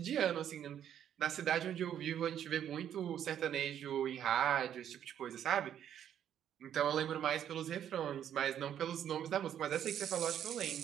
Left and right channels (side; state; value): left; quieter; 9.9 dB